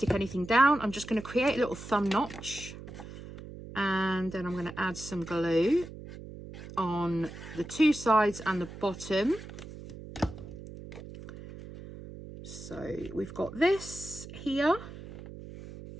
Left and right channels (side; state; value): right; noise; hum, 13 dB below the sound